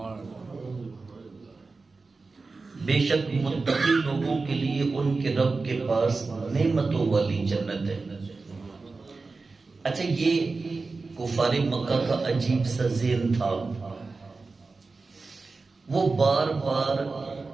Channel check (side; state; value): left; quieter; 4.0 dB